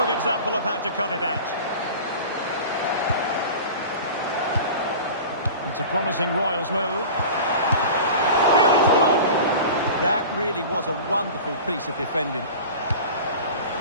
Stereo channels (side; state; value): both; inverted; correlation -0.36